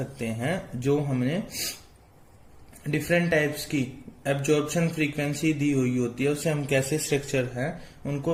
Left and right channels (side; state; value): both; identical; correlation 1.00